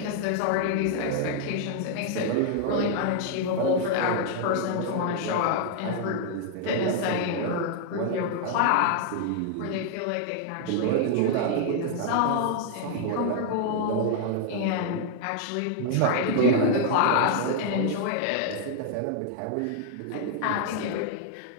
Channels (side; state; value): both; different; correlation 0.00